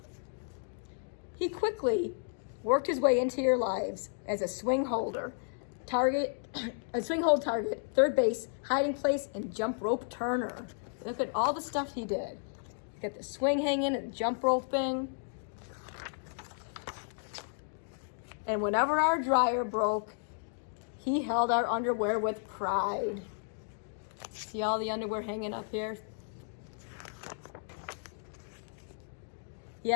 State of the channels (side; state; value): right; silent; digital silence